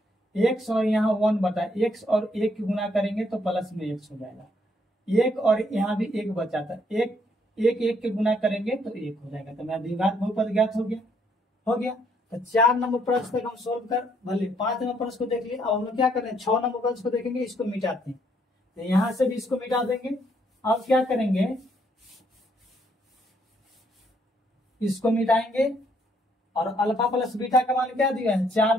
x और यहाँ 1/x और 1 की गुना करेंगे तो प्लस में x हो जाएगा, 1 और यहाँ भी 1 बचा था, 1 के गुना करेंगे तो 1 हो जाएगा। तो मेरा द्विघात बहुपद ज्ञात हो गया। तो 4 नंबर प्रश्न तक हम सोल्व कर भले 5 नंबर प्रश्न को देख लिए। अब हम लोग क्या कर रहे हैं 6 नंबर प्रश्न को देखेंगे, इसको मिटाते हैं, तो यहाँ से भी इसको मिटा देंगे। अब क्या करेंगे इसको मिटाएंगे और अल्फा प्लस बीटा का मान क्या दिया है 4,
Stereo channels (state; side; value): normal; both; correlation 0.70